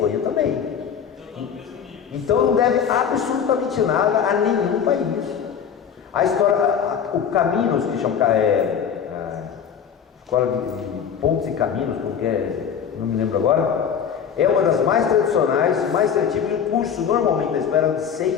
também. Então não deve absolutamente nada a nenhum país. A história, o Caminos, que chama Escola de Pontes e Caminhos, porque não me lembro agora, é uma das mais tradicionais, mais traditivas, e o curso normalmente da espera de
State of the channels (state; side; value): quieter; right; 7.6 dB